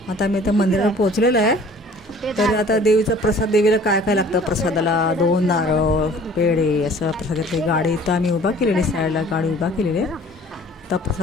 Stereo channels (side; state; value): both; normal; correlation 0.50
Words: आता आम्ही इथं मंदिरावर पोहोचलेलो आहे. तर आता देवीचा प्रसाद, देवीला काय काय लागतं प्रसादाला, 2 नारळ पेढे असं प्रसादातली गाडी इथं आम्ही उभा केलेली, साईडला गाडी उभा केलेली आहे. आता